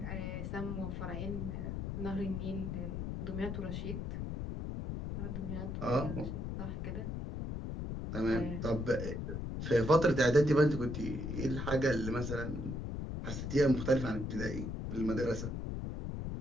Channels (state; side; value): noise; left; rumble, 4 dB below the sound